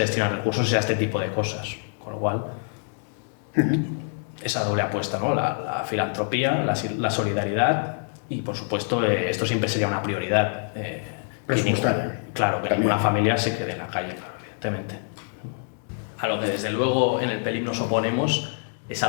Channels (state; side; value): silent; right; 61 dB below the other